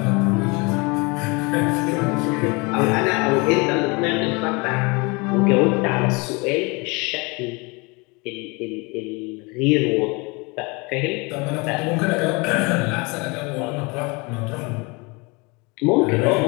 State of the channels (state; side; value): quieter; right; 27.9 dB